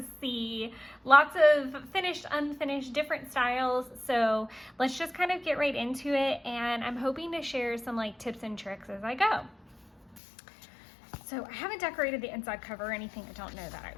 see lots of finished, unfinished, different styles. So let's just kind of get right into it, and I'm hoping to share some tips and tricks as I go. So I haven't decorated the inside cover or anything. I don't know that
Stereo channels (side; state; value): right; drops out; at 10.2 s